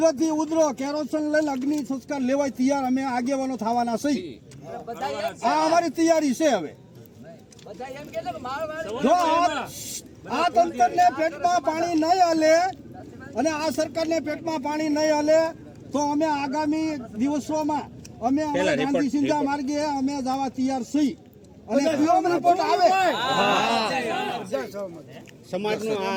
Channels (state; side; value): identical; both; correlation 1.00